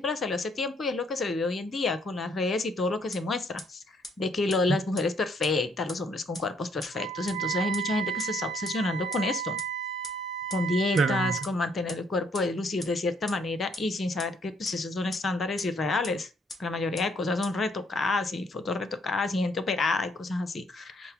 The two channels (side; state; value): both; normal; correlation 0.68